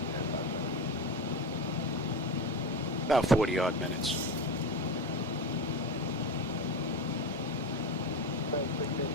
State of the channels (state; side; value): normal; both; correlation 0.21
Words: About 40 odd minutes.